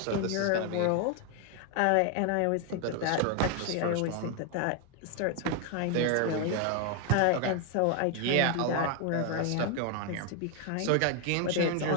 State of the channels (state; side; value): different; both; correlation 0.01